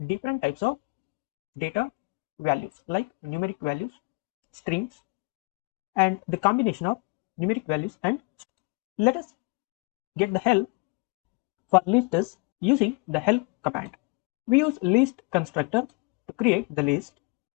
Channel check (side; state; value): right; quieter; 29.6 dB